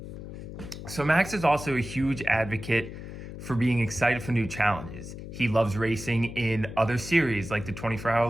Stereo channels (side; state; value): left; noise; hum, 11 dB below the sound